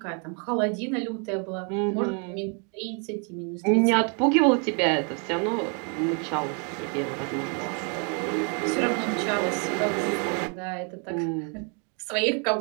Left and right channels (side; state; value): left; quieter; 38.7 dB